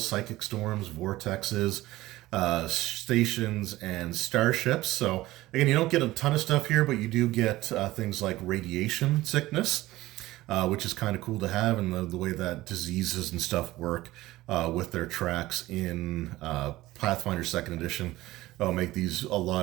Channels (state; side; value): quieter; left; 17.4 dB